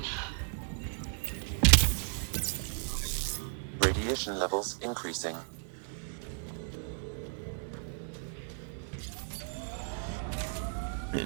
Radiation levels increasing.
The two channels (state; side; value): silent; left; 55 dB below the other